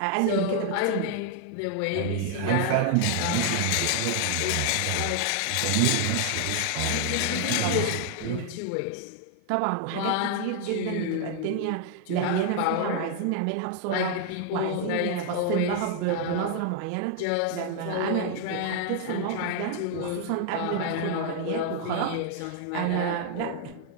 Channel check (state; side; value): different; both; correlation 0.00